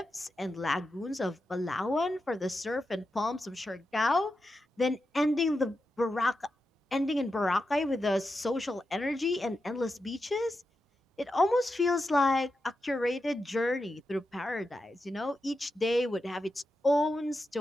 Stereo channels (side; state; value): both; normal; correlation 0.89